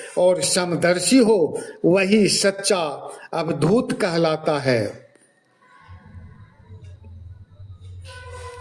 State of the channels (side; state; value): both; identical; correlation 1.00